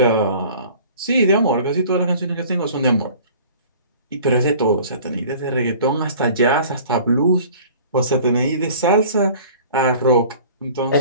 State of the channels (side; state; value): both; inverted; correlation -0.47